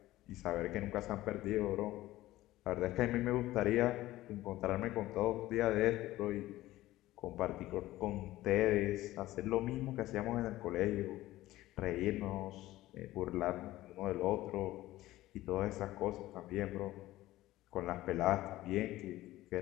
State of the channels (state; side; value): quieter; right; 16.3 dB